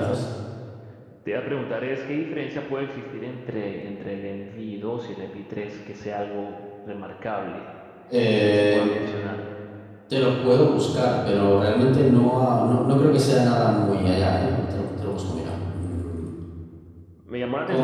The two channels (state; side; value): identical; both; correlation 1.00